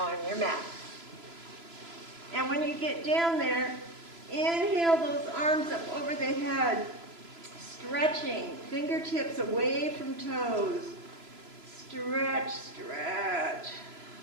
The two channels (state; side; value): late; left; 3.0 ms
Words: your mat. And when you get down there, inhale those arms up over the head, stretching, fingertips away from toes. Stretch.